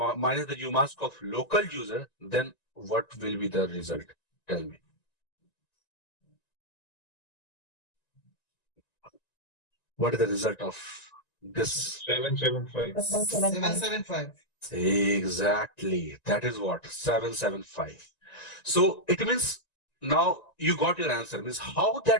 the umask of local user, then what will be the result? Tell me. What is the result of this? 775. 775. Exactly. That is what? 775. So it means now you got your answer. Means how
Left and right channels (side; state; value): right; late; 1.9 ms